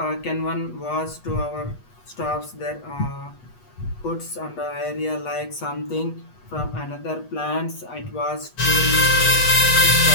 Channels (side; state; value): right; late; 8.2 ms